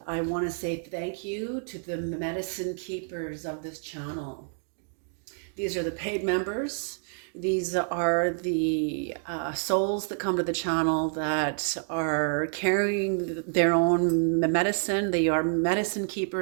I want to say thank you to the medicine keepers of this channel. These are the paid members. These are the souls that come to the channel that are carrying their own medicine. They are medicine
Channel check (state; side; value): silent; left; 59 dB below the other